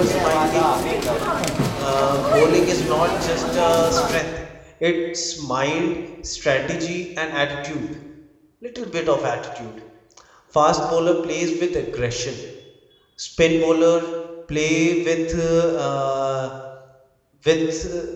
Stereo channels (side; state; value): both; identical; correlation 1.00